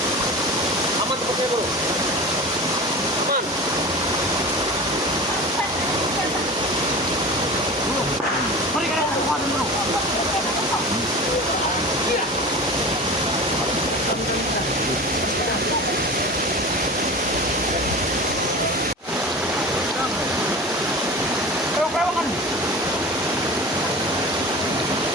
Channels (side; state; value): both; normal; correlation 0.33